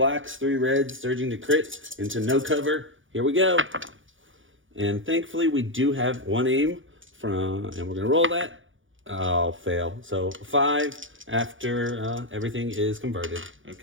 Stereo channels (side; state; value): left; late; 0.57 ms